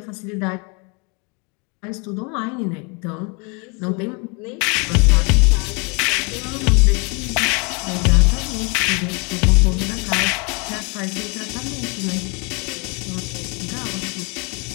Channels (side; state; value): right; quieter; 32.5 dB